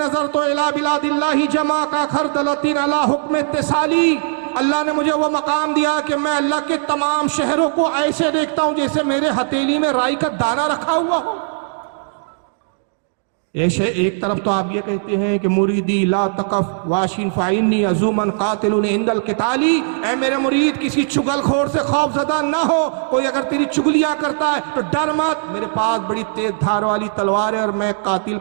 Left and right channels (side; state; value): left; silent; digital silence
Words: تو الہ بلاد اللہ جمع کا خردلتین علی حکم اتصالی، اللہ نے مجھے وہ مقام دیا کہ میں اللہ کے تمام شہروں کو ایسے دیکھتا ہوں جیسے میرے ہتھیلی میں رائی کا دانہ رکھا ہوا ہو۔ ایک طرف تو آپ یہ کہتے ہیں کہ مریدی لا تقف واشن فائنی عزومن قاتل عند القتالی، اے میرے مرید کسی چگل خور سے خوف زدہ نہ ہو، کوئی اگر تیری چگلیاں کرتا ہے تو ڈر مت، میرے پاس بڑی تیز دھار والی تلوار ہے اور میں قاتل